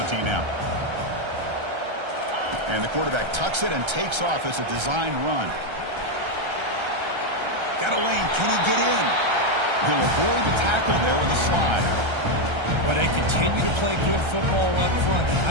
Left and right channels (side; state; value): left; late; 1.3 ms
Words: now. And the quarterback tucks it and takes off as a design run. Got a lane. Can he get in? He'll avoid the tackle there with a slide. Well, they continue to play good football up front.